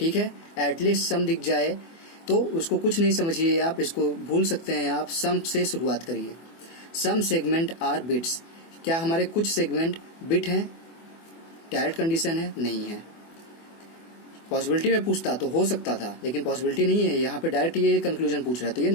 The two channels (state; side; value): late; right; 24 ms